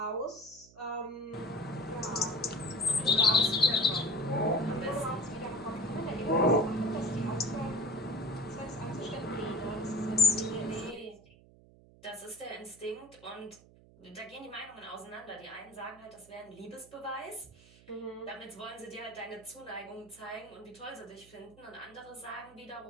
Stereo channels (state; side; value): noise; right; hum, 24 dB below the sound